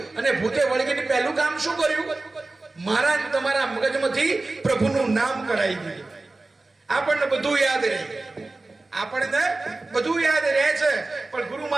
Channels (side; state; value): left; quieter; 3.2 dB